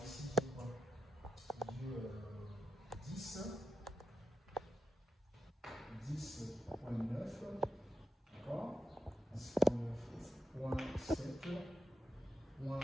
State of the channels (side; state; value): both; normal; correlation 0.88